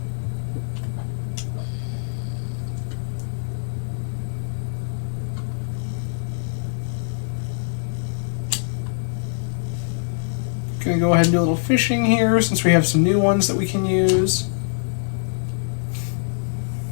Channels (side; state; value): right; silent; digital silence